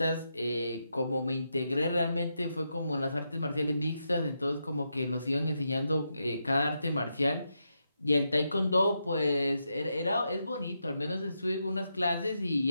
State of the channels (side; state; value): both; inverted; correlation -0.84